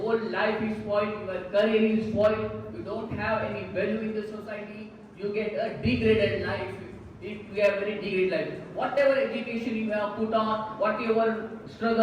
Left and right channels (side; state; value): both; identical; correlation 1.00